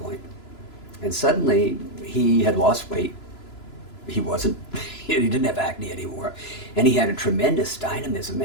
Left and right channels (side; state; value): right; late; 3.0 ms